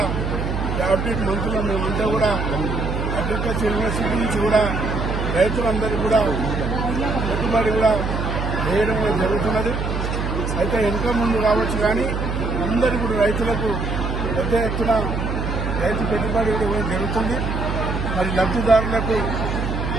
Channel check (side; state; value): right; noise; hum, 3 dB below the sound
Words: క్యాబినెట్ మంత్రులు మేమంతా కూడా అగ్రికల్చర్ యూనివర్సిటీ నుంచి కూడా రైతులందరికీ కూడా పెట్టుబడి కూడా వేయడం కూడా జరుగుతున్నది. అయితే వెనుక ముందు కావచ్చు కానీ అందరికీ కూడా రైతులకు పెద్ద ఎత్తున రైతు పెట్టుబడి కూడా జరుగుతుంది. మరి లబ్ధిదారులకు